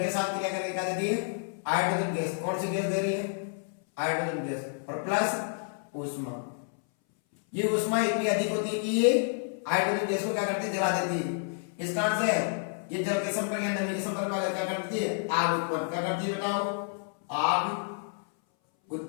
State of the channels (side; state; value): right; silent; 58 dB below the other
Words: के साथ क्रिया करके क्या देती है, हाइड्रोजन गैस। कौन सी गैस दे रही है, हाइड्रोजन गैस, और प्लस ऊष्मा। ये ऊष्मा इतनी अधिक होती है कि ये हाइड्रोजन गैस को क्या करती है, जला देती है। इस कारण से ये जल के संपर्क या नमी के संपर्क में क्या करती है, आग उत्पन्न, क्या करती है बताओ, आग